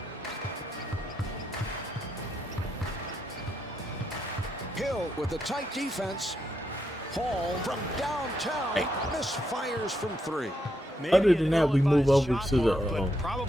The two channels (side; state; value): both; normal; correlation 0.80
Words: Hill with the tight defense. Paul from downtown misfires from 3. Maybe Other an than that, we move ill-advised over shot, to the, Marv, but